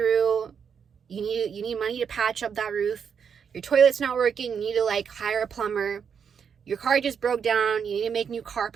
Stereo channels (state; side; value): quieter; left; 7.0 dB